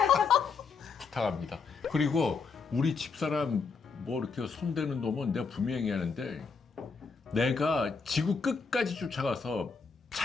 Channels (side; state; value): right; quieter; 5.0 dB